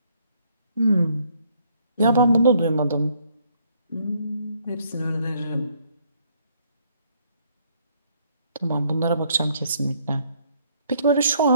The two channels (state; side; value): inverted; both; correlation -0.67